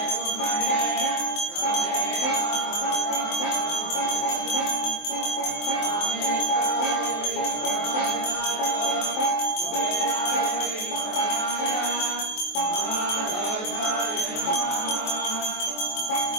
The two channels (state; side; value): late; right; 23 ms